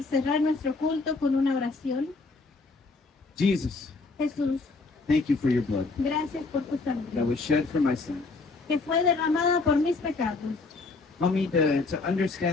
cerrar nuestro culto con una oración. Jesus, Jesús, thank you for your blood gracias por tu that sangre was shed for my sins. que fue derramada por mis pecados. Help me to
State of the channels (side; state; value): right; quieter; 3.8 dB